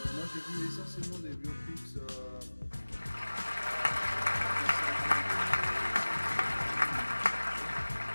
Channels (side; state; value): both; inverted; correlation -1.00